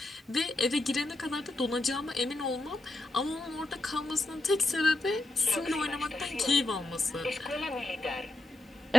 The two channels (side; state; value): both; normal; correlation 0.86